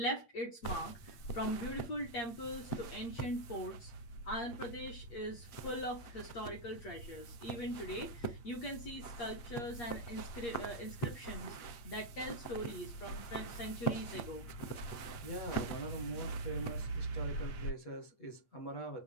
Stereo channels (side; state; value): right; late; 8.5 ms